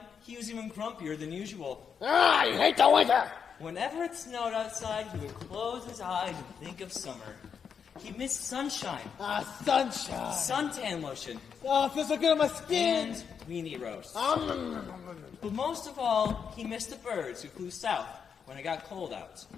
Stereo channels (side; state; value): right; quieter; 6.8 dB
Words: he was even grumpier than usual. I hate the winter! Whenever it snowed outside, he would close his eyes and think of summer. He missed sunshine. Sunshine. Suntan lotion. Oh, it feels so good on my skin. And weenie roast. But most of all, he missed the birds who flew south when it got cold out.